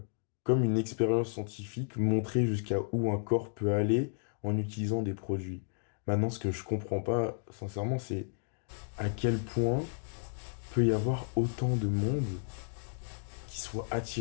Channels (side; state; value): right; silent; digital silence